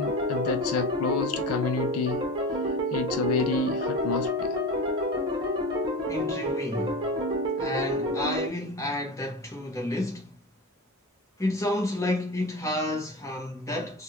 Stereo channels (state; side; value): normal; both; correlation 0.26